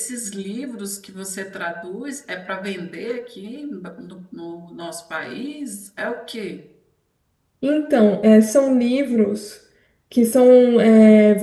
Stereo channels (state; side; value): identical; both; correlation 1.00